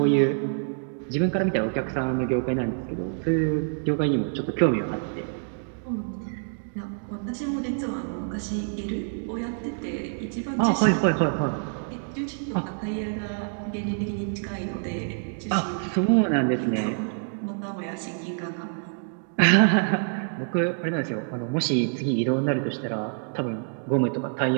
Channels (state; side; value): silent; left; digital silence